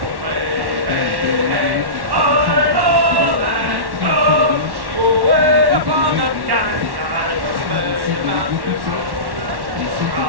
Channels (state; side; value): late; left; 1.1 ms